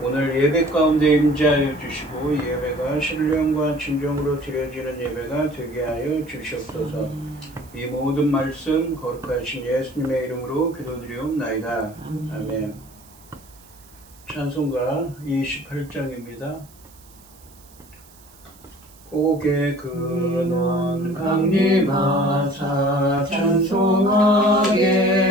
오늘 예배 가운데 임재하여 주시고 예배가 신령과 진정으로 드려지는 예배가 되게 하여 주시옵소서. 이 모든 말씀 거룩하신 예수님의 이름으로 기도드리옵나이다. 아멘. 찬송가 28장입니다. 고개 근원 강림하사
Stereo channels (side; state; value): right; noise; hiss, 25 dB below the sound